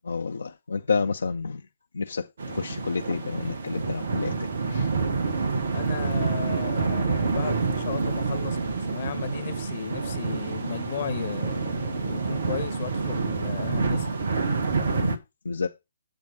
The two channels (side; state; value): both; inverted; correlation -0.76